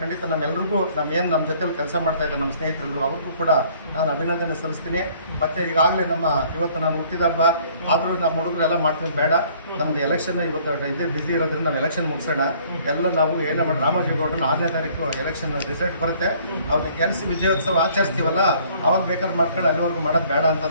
ಖಂಡಿತ ನಮ್ಮೆಲ್ಲರಿಗೂ ನಮ್ಮ ಜೊತೆಲಿ ಕೆಲಸ ಮಾಡ್ತಾ ಇದ್ದಾರೆ ನಮ್ಮ ಸ್ನೇಹಿತರೆಲ್ಲರೂ ಅವ್ರಿಗೂ ಕೂಡ ನಾನು ಅಭಿನಂದನೆ ಸಲ್ಲಿಸ್ತೀನಿ. ಮತ್ತೆ ಈಗಾಗಲೇ ಇವತ್ತು ನಾನು ಹುಟ್ಟಿದ ಹಬ್ಬ ಆದರೂ ನಮ್ಮ ಹುಡುಗರೆಲ್ಲ ಮಾಡ್ತೀವಿ, ಬೇಡ ನಮ್ದು ಎಲೆಕ್ಷನ್ ಇವತ್ತು ಇದೇ ಬಿಸಿ ಇರೋದ್ರಿಂದ ನಾವು ಎಲೆಕ್ಷನ್ ಮುಗಿಸೋಣ. ಎಲ್ಲ ನಾವು ಏನೇ ಮಾಡಿ ರಾಮೋಜಿಗೌಡನ 6ನೇ ತಾರೀಕು ಎಲೆಕ್ಷನ್ ರಿಸಲ್ಟ್ ಬರುತ್ತೆ, ಅವ್ರನ್ನ ಗೆಲ್ಲಿಸಿ ವಿಜಯೋತ್ಸವ ಆಚರಿಸ್ತೀವಲ್ಲ ಅವಾಗ ಬೇಕಾದ್ರೆ ಮಾಡ್ಕೊಂಡು ಅಲ್ಲಿವರೆಗೂ ಮಾಡೋದು ಬೇಡ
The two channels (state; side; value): inverted; both; correlation -0.58